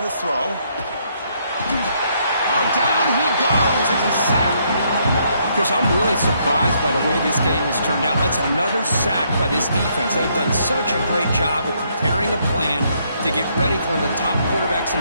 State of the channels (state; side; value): inverted; both; correlation -0.72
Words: to throw. Oh, down he goes. It's a sack. Chris, I'm really surprised by the way this game has turned out. That's another sack by this defense. They've done such a great job of preparing a plan to get ready for one of the top quarterbacks in